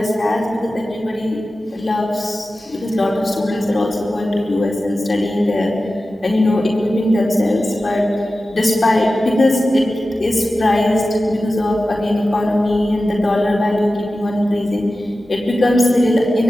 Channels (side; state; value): both; normal; correlation 0.94